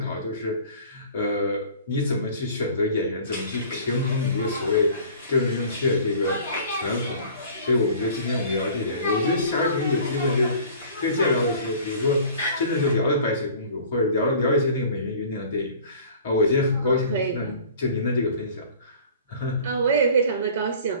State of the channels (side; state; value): both; inverted; correlation -0.47